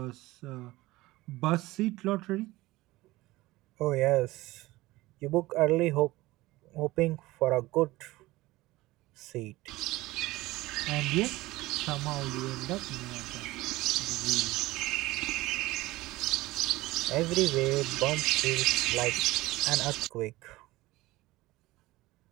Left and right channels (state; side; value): quieter; left; 19.0 dB